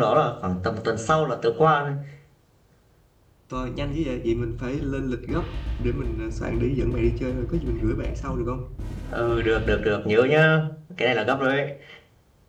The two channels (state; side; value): identical; both; correlation 1.00